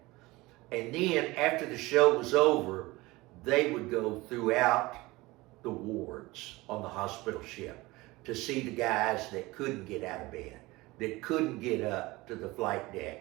And then after the show was over, they would go throughout the wards on the hospital ship to see the guys that couldn't get out of bed, that couldn't get up to the flight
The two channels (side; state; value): left; quieter; 21.1 dB